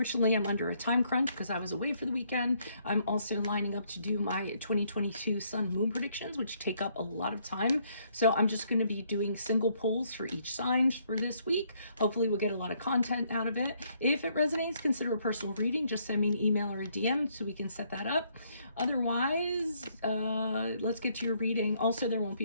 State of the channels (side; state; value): both; inverted; correlation -0.69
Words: I'm under a time crunch because I was away for the weekend. I'm also lining up to do my 2022 sun moon predictions, which take up a lot of time. So I'm just going to be doing single polls for each sign for this week. Hopefully we'll get a lot of content out of it. If it resonates, consider a personal reading. Just send me an email or a DM so we can set that up. Otherwise, let's get to your reading. Also, there won't